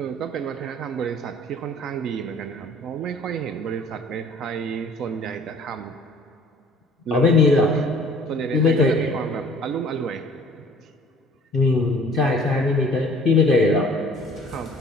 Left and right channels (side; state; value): both; normal; correlation 0.52